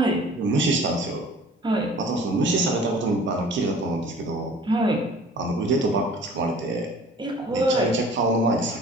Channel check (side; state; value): both; normal; correlation 0.48